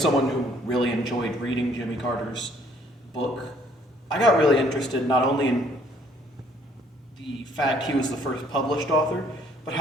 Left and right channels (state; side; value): normal; both; correlation 0.62